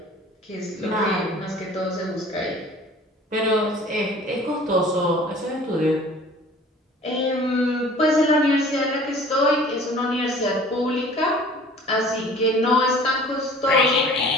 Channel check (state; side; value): normal; both; correlation 0.47